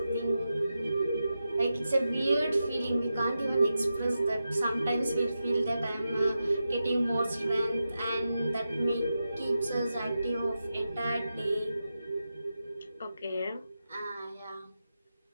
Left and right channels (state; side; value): inverted; both; correlation -0.90